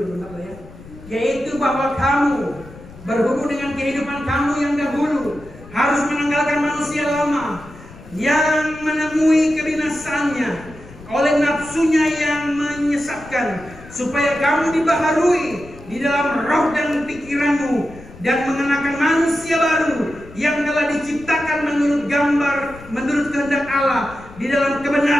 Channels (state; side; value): noise; left; rumble, 19 dB below the sound